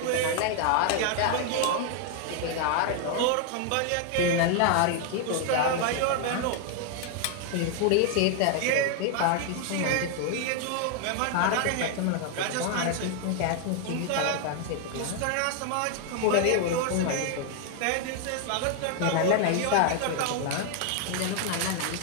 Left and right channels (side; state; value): both; different; correlation 0.00